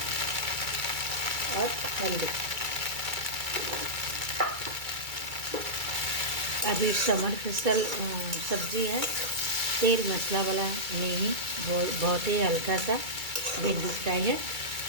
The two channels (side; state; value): left; late; 2.3 ms